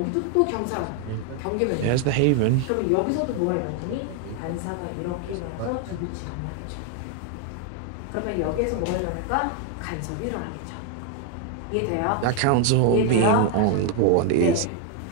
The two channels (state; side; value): different; both; correlation 0.00